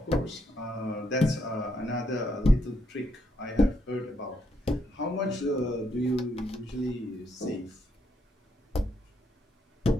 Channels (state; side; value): normal; both; correlation 0.75